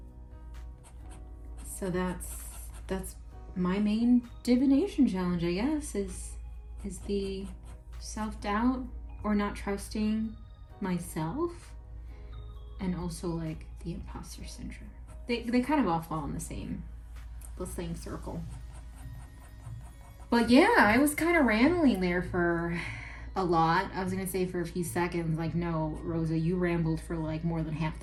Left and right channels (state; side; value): identical; both; correlation 1.00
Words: So that's my main divination challenge, I guess, is the self-doubt or not trusting myself, and also like the imposter syndrome. They kind of all fall in the same circle. But yeah, I was kind of rambling there for a lot. I was gonna say for a few seconds, like, no, Rosa, you rambled for like more than half